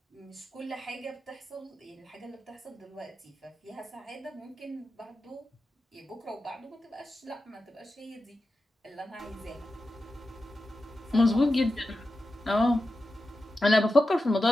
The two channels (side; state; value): both; normal; correlation 0.91